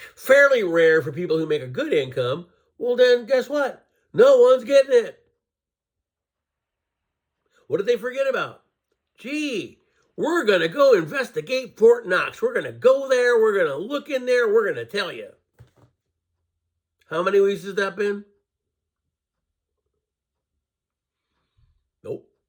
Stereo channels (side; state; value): both; identical; correlation 1.00